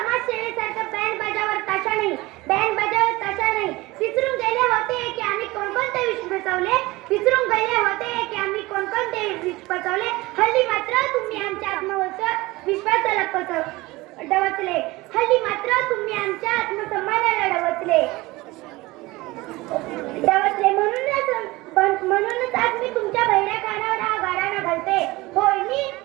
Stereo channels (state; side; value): quieter; left; 20.8 dB